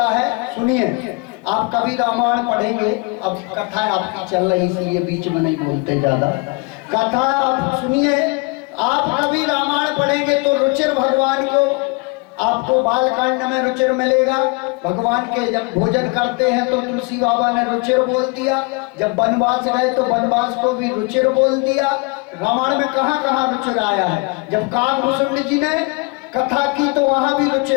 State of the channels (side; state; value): right; quieter; 28.0 dB